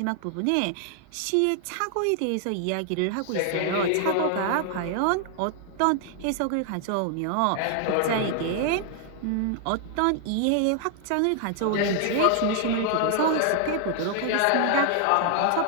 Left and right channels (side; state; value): both; different; correlation 0.00